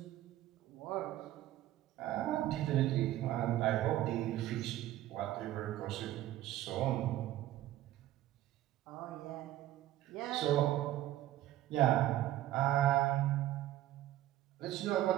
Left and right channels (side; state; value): left; quieter; 14.1 dB